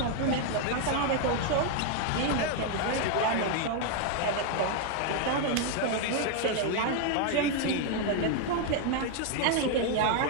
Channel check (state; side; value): different; both; correlation 0.00